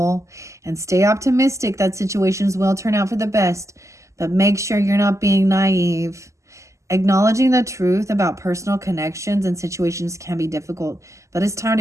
and stay optimistic that situations will turn out for the best, but make sure you're not being naive. Acknowledging the truth about personal connections and situations can be difficult, but it's time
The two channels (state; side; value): late; left; 0.15 ms